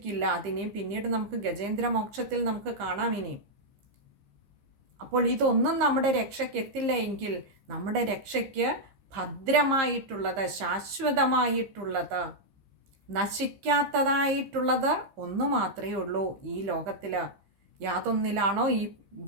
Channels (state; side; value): late; left; 15 ms